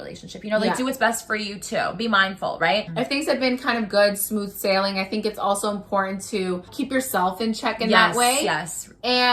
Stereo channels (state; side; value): identical; both; correlation 1.00